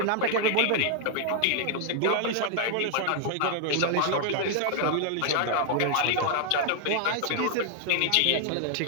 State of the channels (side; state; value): both; different; correlation -0.01